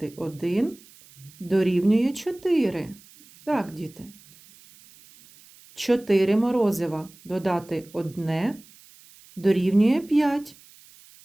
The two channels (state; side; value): noise; right; hiss, 25 dB below the sound